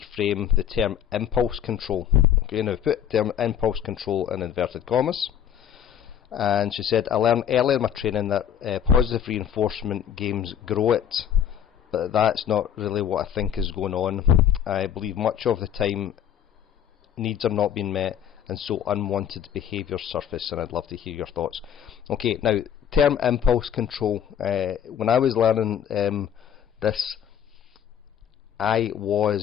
the term impulse control. Okay, now put term impulse control in inverted commas. And she said, I learned earlier in my training that positive reinforcement games grow it, but that's not really what I think is going on. I believe much of the time needs are not being met, and so unwanted behaviours surface, and I'd love to hear your thoughts. Okay, now, term impulse control. When I was learning this,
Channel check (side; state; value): right; quieter; 9.3 dB